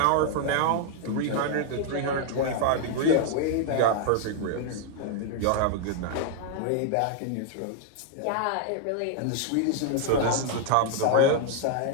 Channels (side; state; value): both; different; correlation 0.00